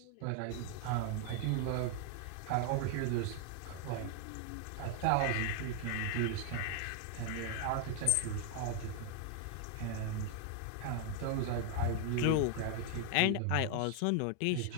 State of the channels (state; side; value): different; both; correlation 0.00